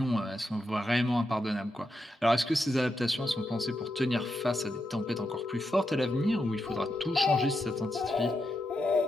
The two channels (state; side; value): normal; both; correlation 0.85